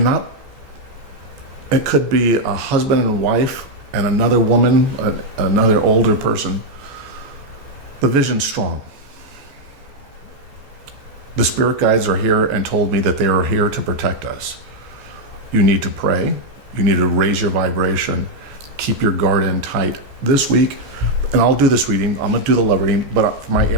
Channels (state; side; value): late; left; 14 ms